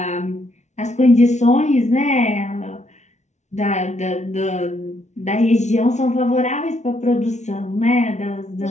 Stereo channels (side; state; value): right; late; 0.33 ms